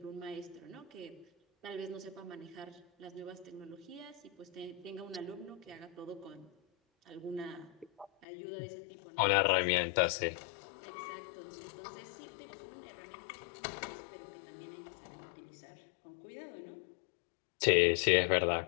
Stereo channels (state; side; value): drops out; right; at 8.2 s